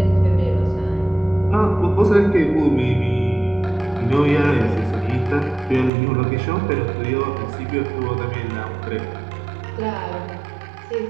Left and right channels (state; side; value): drops out; left; at 5.9 s